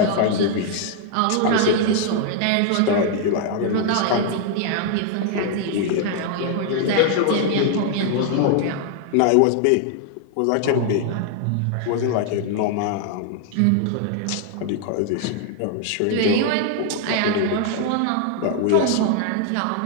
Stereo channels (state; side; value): different; both; correlation 0.00